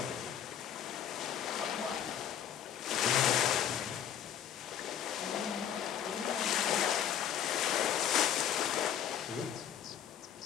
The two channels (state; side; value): quieter; right; 9.6 dB